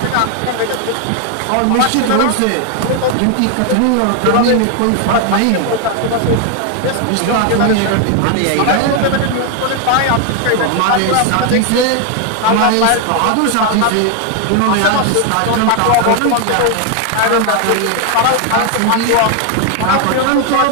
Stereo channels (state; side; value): different; both; correlation 0.01